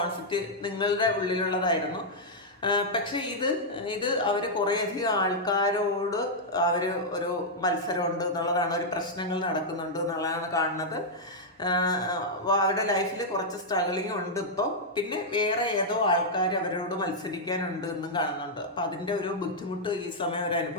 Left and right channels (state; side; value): normal; both; correlation -0.05